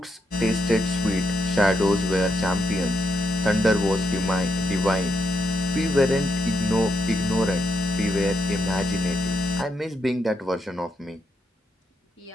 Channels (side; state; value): both; normal; correlation 0.80